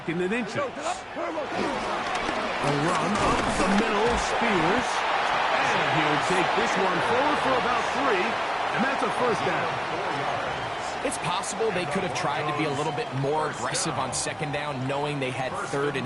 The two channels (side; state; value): both; identical; correlation 1.00